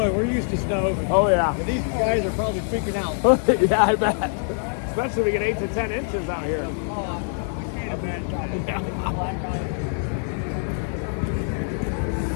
We're used to snow. Oh, yeah. But these guys are probably freaking out. Yeah, I bet. Especially if we get 8 to 10 inches out here. I can't imagine.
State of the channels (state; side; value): silent; right; 56 dB below the other